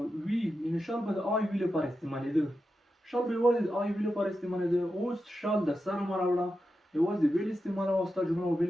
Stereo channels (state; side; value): normal; both; correlation 0.89